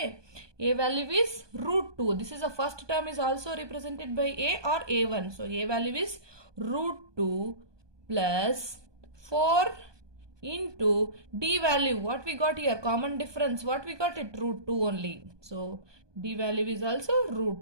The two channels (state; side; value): late; left; 1.2 ms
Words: A value is root 2. This is the first term is also represented by A or A1. So A value is root 2 plus 4 into D value. What we got here? Common difference. What we got it? Root 2 only. So D value is also